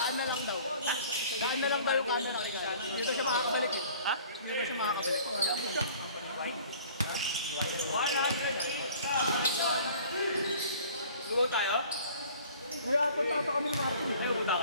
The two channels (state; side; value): inverted; both; correlation -0.50